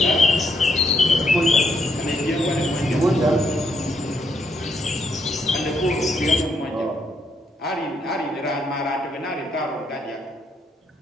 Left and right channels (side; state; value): both; normal; correlation 0.75